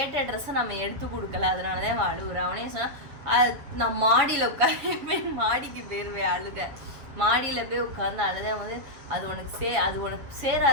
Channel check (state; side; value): late; left; 7.2 ms